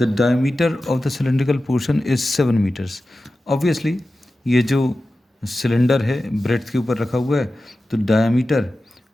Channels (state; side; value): normal; both; correlation 0.94